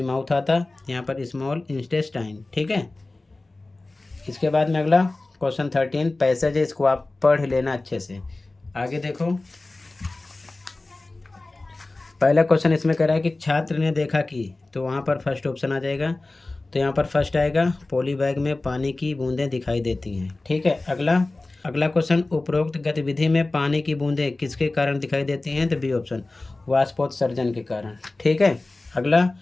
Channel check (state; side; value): quieter; right; 3.1 dB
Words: माउथ आता, यहाँ पर स्मॉल इंटेस्टाइन। ठीक है, इसके बाद में अगला क्वेश्चन 13 पैसेज है, इसको आप पढ़ लेना अच्छे से। आगे देखो, पहला क्वेश्चन इसमें कह रहा है कि छात्र ने देखा कि, तो वहाँ पर फर्स्ट ऑप्शन आ जाएगा। तो यहाँ पर फर्स्ट आएगा, पॉली बैग में पानी की बूंदें दिखाई देती हैं। ठीक है, अगला, अगला क्वेश्चन, उपरोक्त गतिविधि में पानी की बूंदें किसके कारण दिखाई देती हैं? तो बी ऑप्शन, वाष्पोत्सर्जन के कारण। ठीक है। अगला,